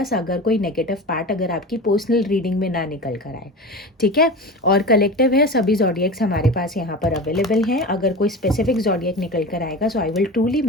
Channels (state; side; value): normal; both; correlation 0.30